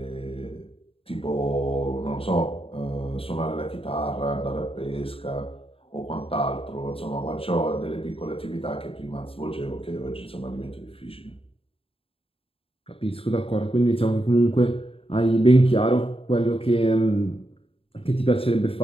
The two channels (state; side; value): late; right; 0.27 ms